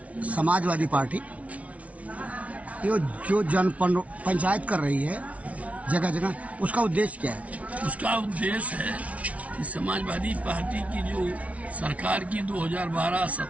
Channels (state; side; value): late; left; 0.066 ms